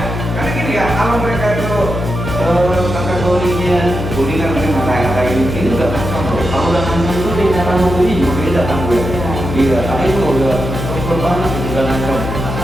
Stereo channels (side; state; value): left; noise; hum, 5 dB below the sound